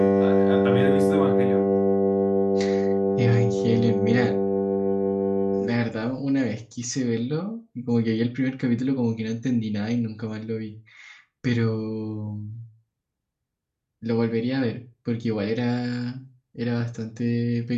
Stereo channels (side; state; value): both; identical; correlation 1.00